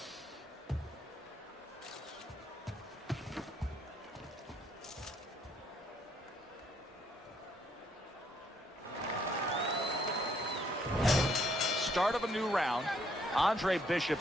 Start of a new round. Andre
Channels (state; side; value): normal; both; correlation 0.69